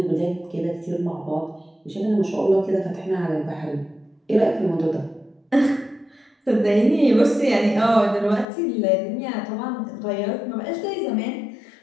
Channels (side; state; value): right; drops out; at 8.5 s